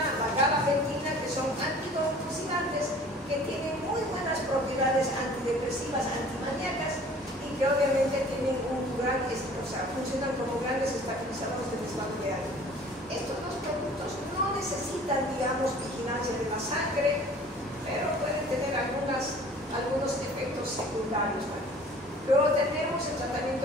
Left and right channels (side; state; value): both; normal; correlation 0.49